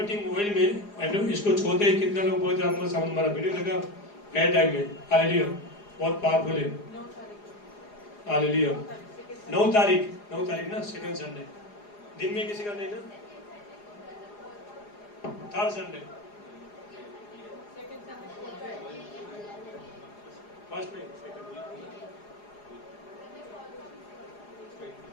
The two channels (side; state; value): right; late; 4.9 ms